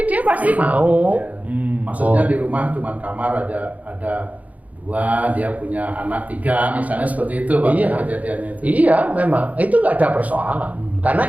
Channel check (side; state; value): left; late; 0.073 ms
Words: dia pasti mau. Maksudnya di rumah cuma kamar ada 2, dia punya anak 3, misalnya seperti itu Pak, Iya. kejadiannya itu. Iya, memang itu nggak ada persoalan. Karena